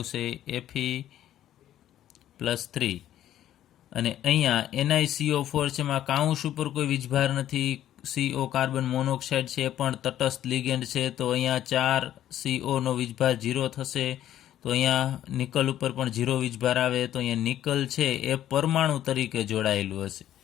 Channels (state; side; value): quieter; right; 12.0 dB